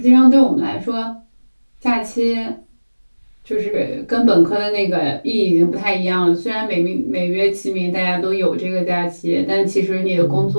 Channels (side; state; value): both; inverted; correlation -1.00